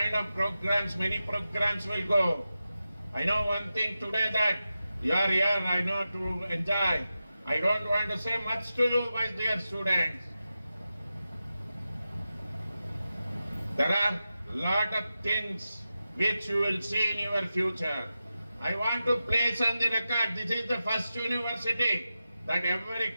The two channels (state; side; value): inverted; both; correlation -0.91